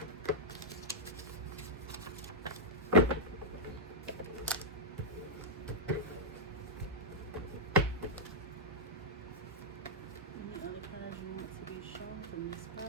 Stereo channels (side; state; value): both; normal; correlation -0.09